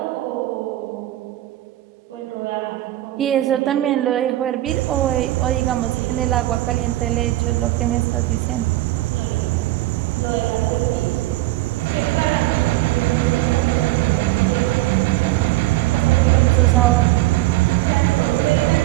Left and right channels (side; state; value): left; quieter; 16.7 dB